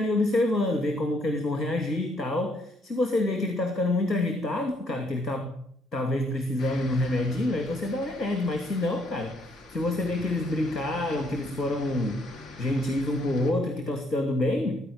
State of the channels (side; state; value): both; normal; correlation 0.69